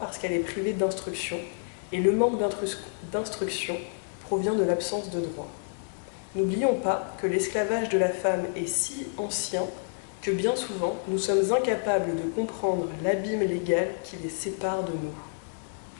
qu'elle est privée d'instruction, et le manque d'instruction provient de l'absence de droit. N'oublions pas que l'esclavage de la femme est si ancien que bien souvent nous sommes incapables de comprendre l'abîme légal qui les sépare de nous.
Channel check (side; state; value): right; silent; digital silence